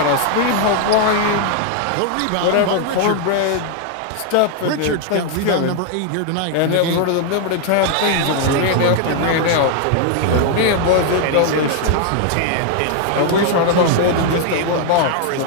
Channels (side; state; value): both; different; correlation 0.00